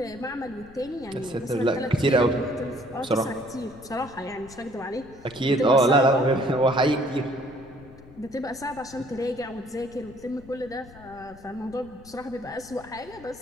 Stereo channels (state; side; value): noise; left; rumble, 21 dB below the sound